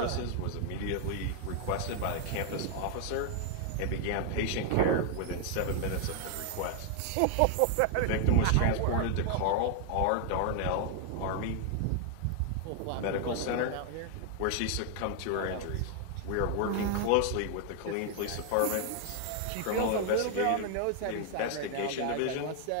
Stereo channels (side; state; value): both; different; correlation 0.00